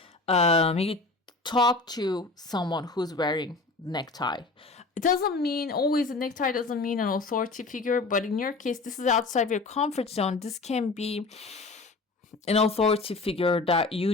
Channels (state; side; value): quieter; right; 3.6 dB